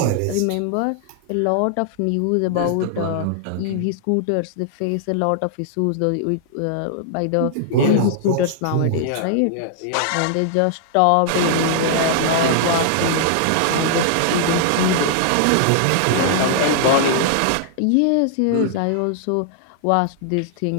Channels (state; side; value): different; both; correlation -0.01